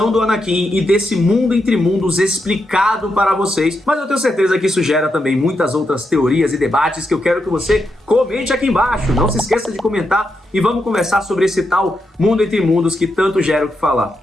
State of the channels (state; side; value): normal; both; correlation 0.84